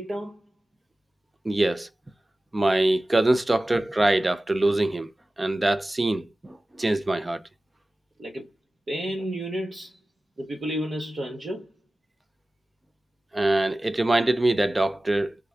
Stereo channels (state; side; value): normal; both; correlation 0.96